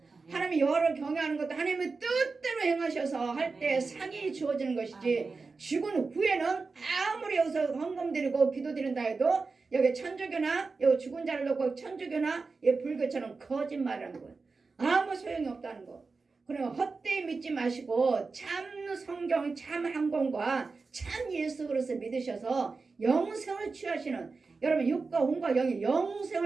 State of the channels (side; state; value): left; quieter; 4.2 dB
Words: 하나님의 여호와를 경외하는 것도 하나님의 뜻대로 행하셔서 할 때 상이 주어지는 것이지 죽은 후에는 아무리 여기서 헌금 드리고 기도 드린다 해도 여기 천주교나 여기 죽은 자를 놓고 천주교나 불교처럼 거짓말하는 거예요. 아무 소용이 없다는 거. 그러면 헛되이 믿지 마시고 참 성경, 참 항공과 참 예수 그리스도 믿으셔서 영생을 취하시는 여러분 육과 혼과 영의